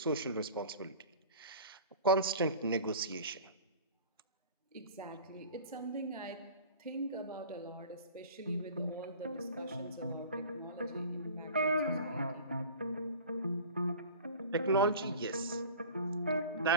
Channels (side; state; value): both; inverted; correlation -0.41